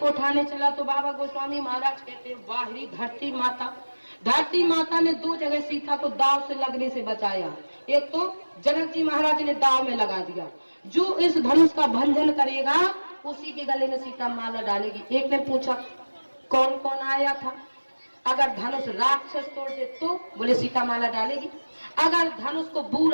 उठाने चला तो बाबा गोस्वामी महाराज कहते हैं वाहिरी धरती माता ने 2 जगह सीता को दाव से लगने से बचाया। एक तो जनक जी महाराज ने दाव में लगा दिया, जो इस धनुष का भंजन करेगा उसी के गले में सीता माला डालेगी। एक ने पूछा कौन कौन आया था? अगर धनुष राक्षस तोड़ दे तो? बोले सीता माला डालेगी। अगर धनुष को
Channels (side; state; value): both; inverted; correlation -1.00